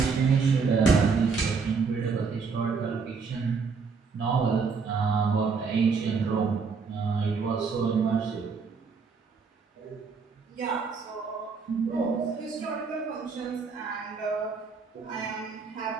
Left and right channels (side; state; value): left; quieter; 5.2 dB